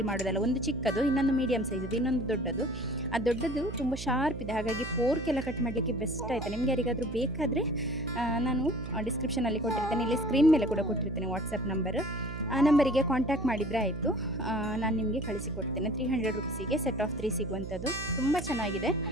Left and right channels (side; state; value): right; noise; hum, 9 dB below the sound